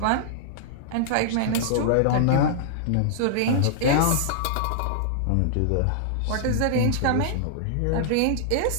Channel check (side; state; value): both; different; correlation -0.01